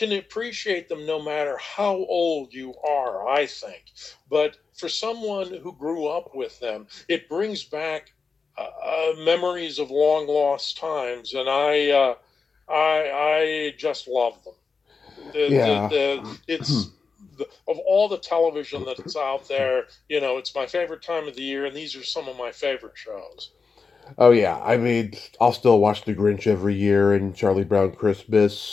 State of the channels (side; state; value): right; quieter; 4.9 dB